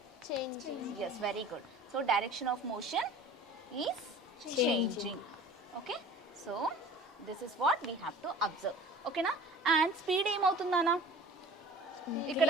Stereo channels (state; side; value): normal; both; correlation 0.42